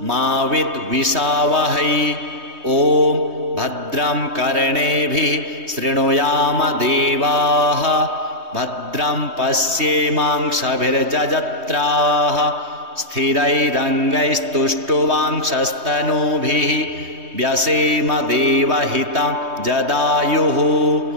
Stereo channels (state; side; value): late; left; 3.2 ms